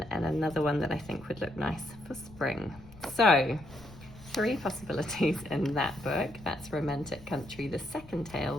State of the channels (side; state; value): left; noise; rumble, 19 dB below the sound